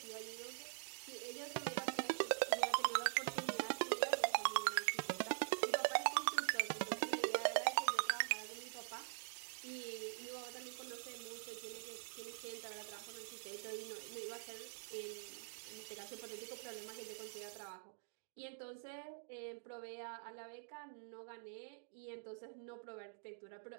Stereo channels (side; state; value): left; silent; digital silence